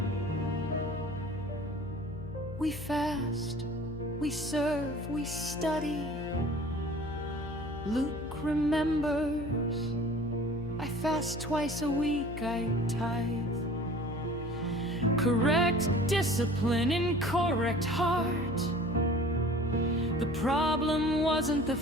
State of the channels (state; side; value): noise; left; hum, 11 dB below the sound